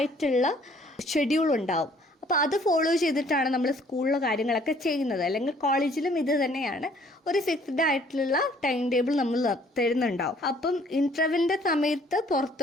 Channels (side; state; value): both; normal; correlation 0.59